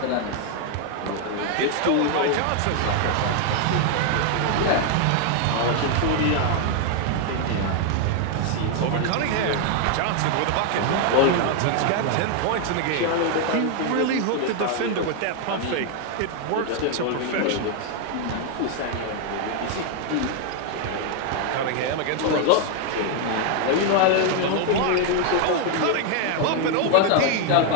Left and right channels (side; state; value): both; different; correlation 0.00